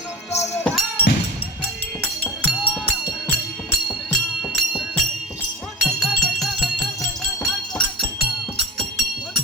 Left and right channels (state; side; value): normal; both; correlation 0.33